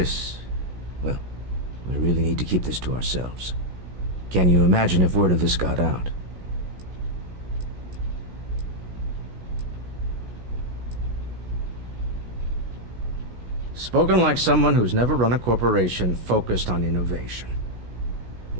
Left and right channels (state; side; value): late; left; 16 ms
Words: well, we really need to keep this to ourselves. Can you imagine if word of this got out? Spoken like someone who's never run a corporation focused on innovation.